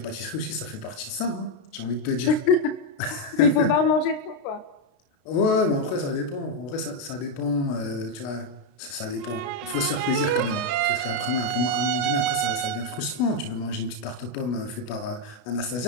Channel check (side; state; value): right; late; 33 ms